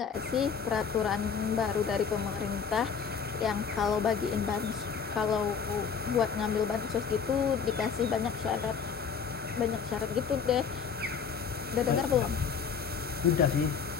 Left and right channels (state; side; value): quieter; right; 6.4 dB